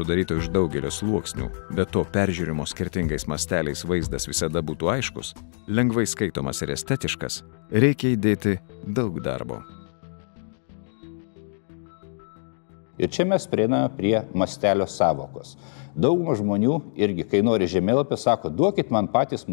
iš daugelio sluoksnių, bet to peržiūrimo skirtingais masteliais vaizdas visada būtų aiškus, lengvai skaitomas ir estetiškas, reikia įdėti daug darbo. Ir čia mes prieiname prie mastelio sąvokos. Dauguma žmonių irgi, kai nori žemėlapį, sako, duokit man patys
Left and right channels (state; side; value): silent; right; digital silence